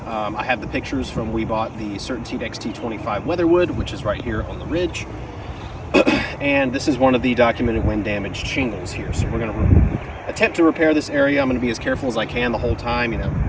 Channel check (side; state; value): both; identical; correlation 1.00